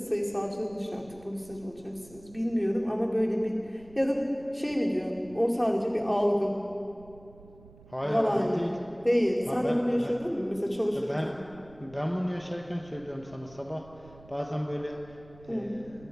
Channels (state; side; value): noise; right; rumble, 22 dB below the sound